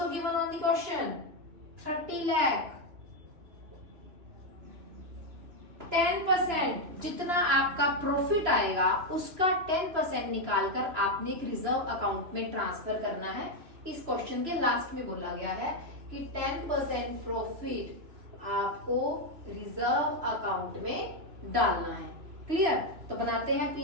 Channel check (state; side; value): late; left; 3.0 ms